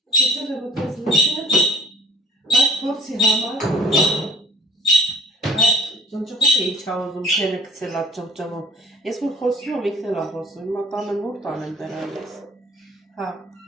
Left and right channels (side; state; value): both; normal; correlation 0.50